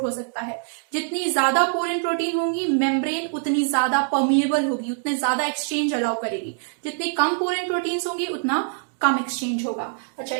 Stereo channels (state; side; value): silent; left; digital silence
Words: हो सकता है। जितनी ज्यादा पोरेन प्रोटीन होंगी, मेम्ब्रेन उतनी ज्यादा परमिएबल होगी, उतने ज्यादा एक्सचेंज अलाउ करेगी। जितनी कम पोरेन प्रोटीन्स होंगी उतना कम एक्सचेंज होगा। अच्छा,